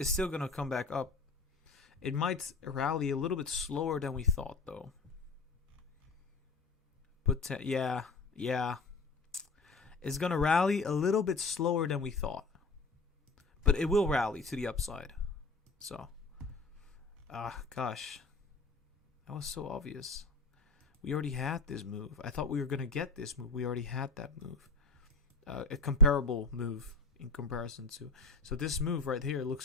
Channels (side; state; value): right; quieter; 3.8 dB